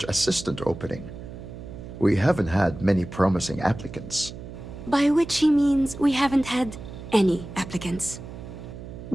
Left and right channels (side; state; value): right; noise; hum, 12 dB below the sound